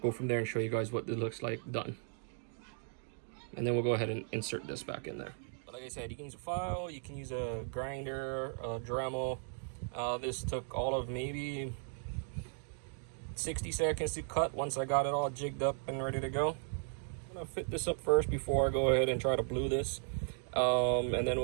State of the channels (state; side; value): silent; left; 53 dB below the other